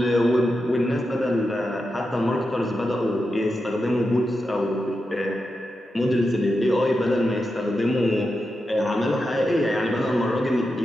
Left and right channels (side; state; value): both; normal; correlation 0.88